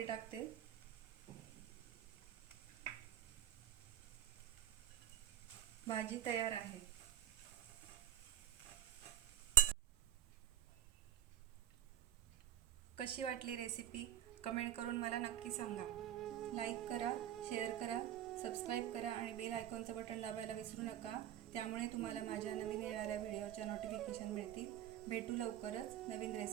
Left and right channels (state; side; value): quieter; left; 12.0 dB